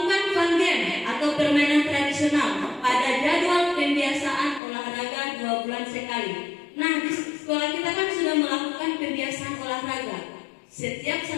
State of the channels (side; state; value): right; drops out; at 4.6 s